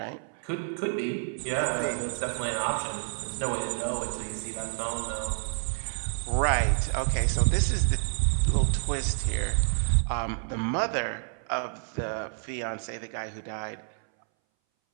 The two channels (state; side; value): silent; left; 59 dB below the other